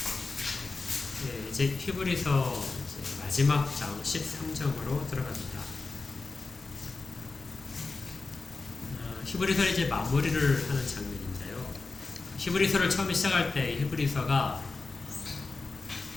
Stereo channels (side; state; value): right; quieter; 3.8 dB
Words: 네, 이제 히브리서 마지막 장 13장으로 들어갑니다. 히브리서를 이제 마무리를 하는 장면인데요. 히브리서를 처음에 시작할 때 히브리서가